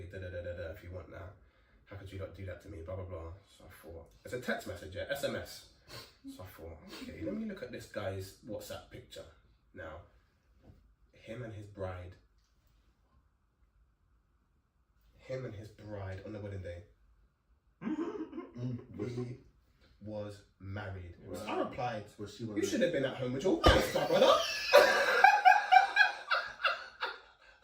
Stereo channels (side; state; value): both; identical; correlation 1.00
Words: if you want that, how could you not do that to me? Blah blah blah. So I thought it's a text message, yeah, SMS. So I thought, okay, let me look at this guy's WhatsApp picture now. Him and his bride on the wedding day. He was married. Was I replied, Was she you should have been at home with your wife, my brother.